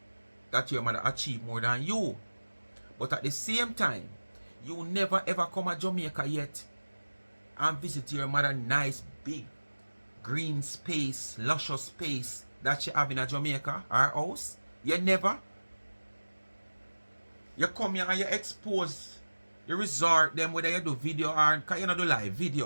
that your mother achieve more than you. But at the same time, you never ever come to Jamaica yet and visit your mother nice big green space, luscious space that she have in a Jamaica, her house. You never. You come here and you expose the resort them whether you do video or because you not do live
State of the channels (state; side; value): inverted; both; correlation -1.00